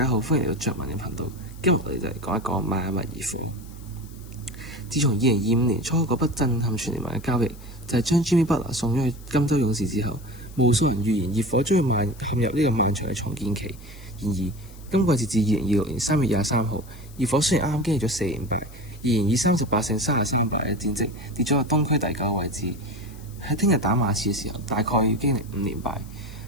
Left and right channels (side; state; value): left; noise; hiss, 23 dB below the sound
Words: 好，歡迎嚟到着文嘅頻道。今日我哋就嚟講一講邁阿密熱火。自從2025年初嗰筆震撼全聯盟嘅交易，就係將 Jimmy Butler 送咗去金州勇士之後，無數人預言熱火將會陷入呢個漫長嘅重建期。然而，今季截至2026年3月23號，熱火雖然啱啱經歷咗4連敗，仍然以38勝33敗嘅戰績跌咗到東區第9個位置。喺聽日打馬刺嘅時候，大概要經歷5連敗。